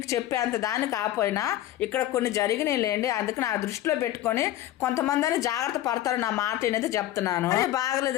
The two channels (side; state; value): right; quieter; 13.7 dB